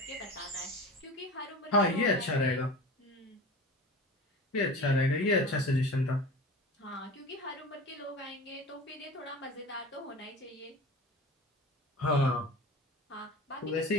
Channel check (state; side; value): normal; both; correlation 0.34